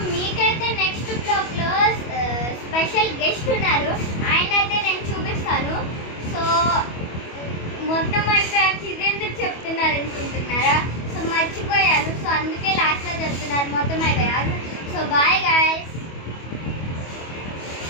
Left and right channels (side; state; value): right; late; 25 ms